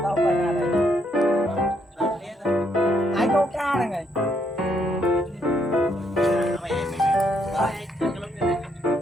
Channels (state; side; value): normal; both; correlation 0.73